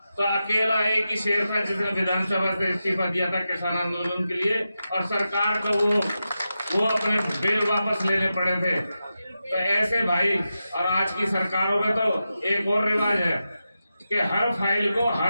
तो अकेला एक ही शेर था जिसने विधानसभा से इस्तीफा दिया था किसान आंदोलन के लिए, और सरकार को वो अपने बिल वापस लेने पड़े थे। तो ऐसे भाई, और आज की सरकारों में तो एक और रिवाज है कि हर फाइल को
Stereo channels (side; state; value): both; inverted; correlation -0.90